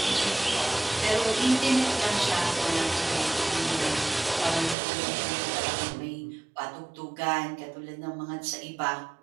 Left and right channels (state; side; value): drops out; left; at 4.8 s